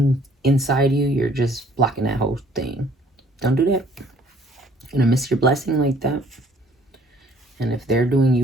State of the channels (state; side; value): normal; both; correlation 0.58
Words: inside you, you're just blocking that whole thing. Don't do that. You're going to miss your blessing like that. And if they're doing